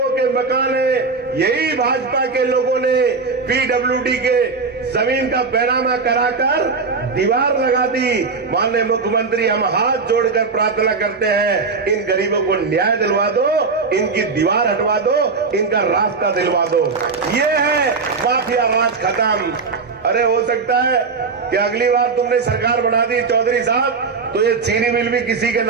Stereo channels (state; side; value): quieter; left; 4.6 dB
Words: के मकान हैं। यही भाजपा के लोगों ने पीडब्ल्यूडी के जमीन का बैरामा कराकर दीवार लगा दी। माननीय मुख्यमंत्री, हम हाथ जोड़कर प्रार्थना करते हैं, इन गरीबों को न्याय दिलवा दो, इनकी दीवार हटवा दो, इनका रास्ता दिलवा दो। ये है माफिया राज खत्म। अरे हो सकता है कि अगली बार तुमने सरकार बना दी चौधरी साहब, तो ये चीनी मिल भी किसी के